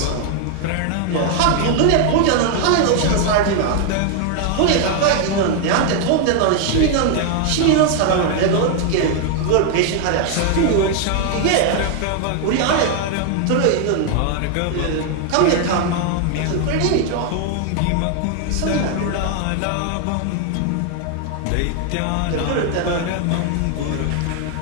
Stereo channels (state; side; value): different; both; correlation 0.00